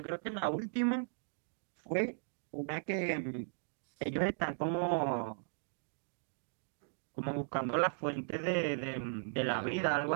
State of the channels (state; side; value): silent; left; digital silence